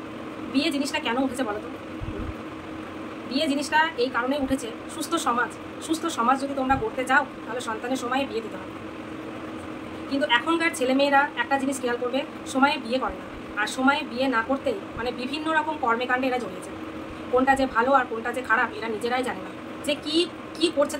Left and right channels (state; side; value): identical; both; correlation 1.00